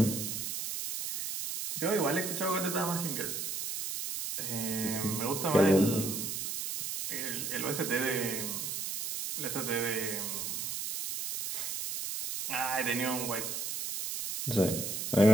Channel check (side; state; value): right; noise; hiss, 4 dB below the sound